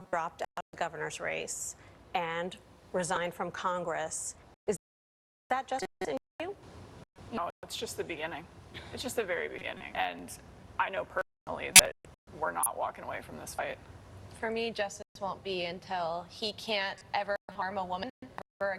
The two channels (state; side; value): identical; both; correlation 1.00